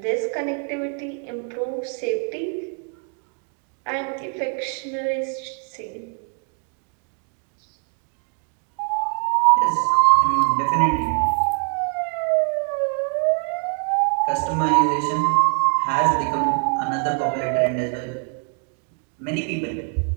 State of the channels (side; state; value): left; quieter; 37.9 dB